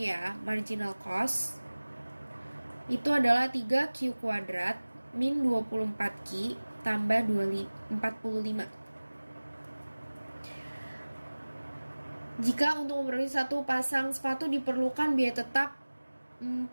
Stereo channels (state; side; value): inverted; both; correlation -1.00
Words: ya. Marginal cost itu adalah 3Q kuadrat min 24Q tambah 45. Jika untuk memproduksi satu pasang sepatu diperlukan biaya tetap